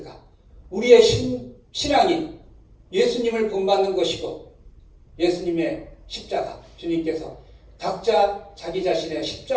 우리의 신앙이 예수님을 본받는 것이고 예수님의 십자가, 주님께서 각자 자기 자신의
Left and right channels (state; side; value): identical; both; correlation 1.00